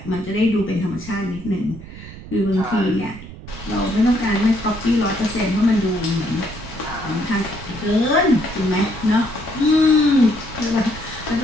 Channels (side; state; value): right; noise; rumble, 15 dB below the sound